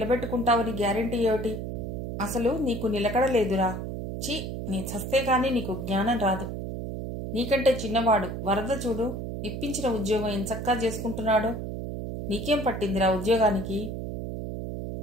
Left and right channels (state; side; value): noise; right; hum, 5 dB below the sound